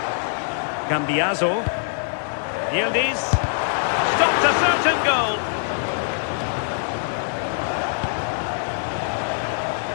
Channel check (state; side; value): silent; right; digital silence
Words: Cambiaso. Yildiz. Stopped a certain goal.